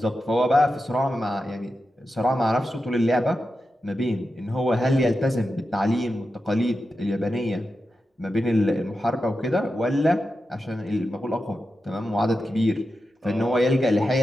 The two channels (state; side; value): normal; both; correlation 0.90